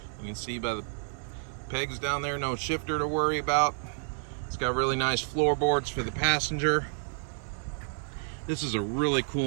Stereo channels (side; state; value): left; silent; 58 dB below the other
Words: You can see by the pegs down there, no shifter to worry about. It's got really nice floorboards for the passenger. This is a really